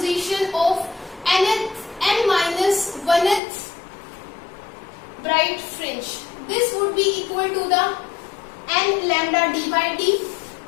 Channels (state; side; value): drops out; right; at 3.4 s